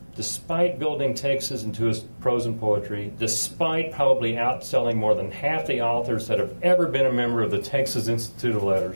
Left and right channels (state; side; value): inverted; both; correlation -1.00